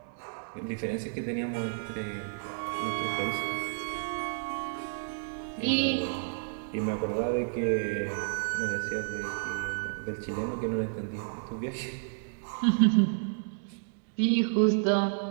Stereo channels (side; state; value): left; silent; digital silence